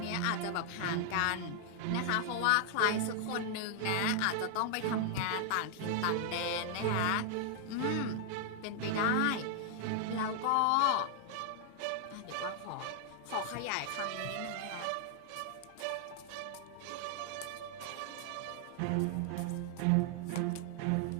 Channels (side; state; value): both; different; correlation 0.00